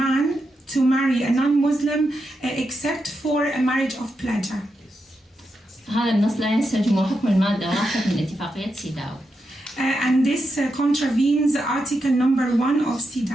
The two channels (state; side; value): normal; both; correlation 0.86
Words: man to marry a non-Muslim except for a marriage of pleasure. هذا النص لا ينسجم حكم المادة 1 من اتفاقية سيداو. And this contravenes Article number 1 of